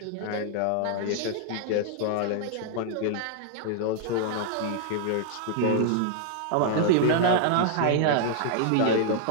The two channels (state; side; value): different; both; correlation 0.00